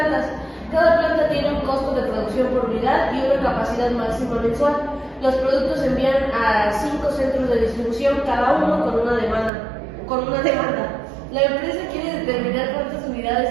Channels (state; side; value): drops out; left; at 9.5 s